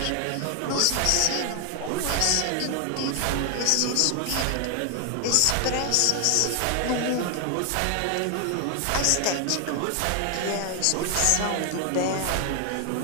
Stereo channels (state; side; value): different; both; correlation 0.00